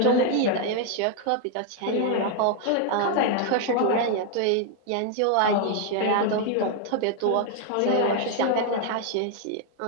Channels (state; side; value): different; both; correlation 0.00